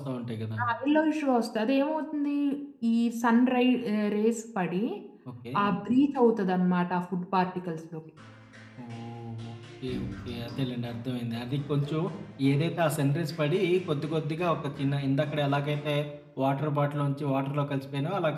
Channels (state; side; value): identical; both; correlation 1.00